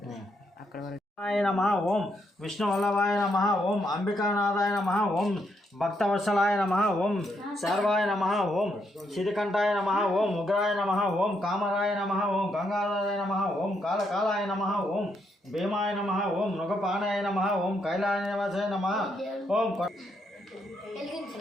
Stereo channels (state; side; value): normal; both; correlation 0.77